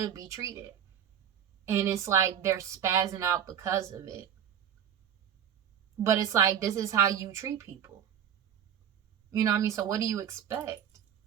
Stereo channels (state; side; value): quieter; left; 9.0 dB